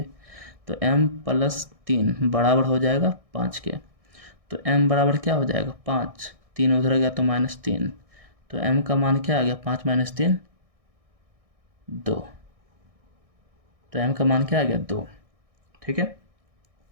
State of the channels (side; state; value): left; late; 1.6 ms